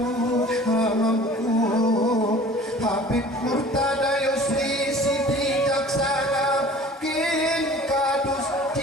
hamku Habib Murtada Yusri Siti Jaksana kin kadus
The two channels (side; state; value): both; normal; correlation 0.46